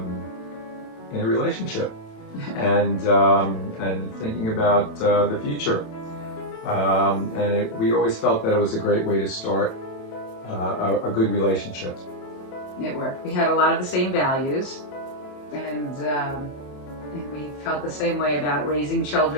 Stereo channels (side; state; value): right; late; 28 ms